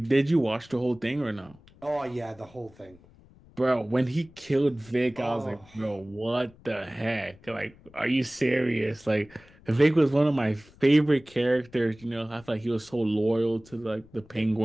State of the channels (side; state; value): left; noise; rumble, 25 dB below the sound